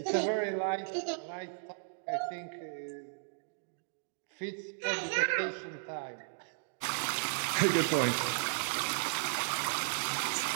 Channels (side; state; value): left; silent; digital silence